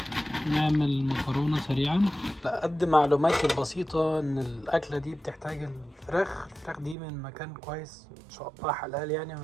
نعمل مكرونة سريعا. قد معلوماتي البسيطة ان الاكلة دي بتحتاج الفراخ دي من مكان كويس ان شاء الله حلال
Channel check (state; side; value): drops out; left; at 7.0 s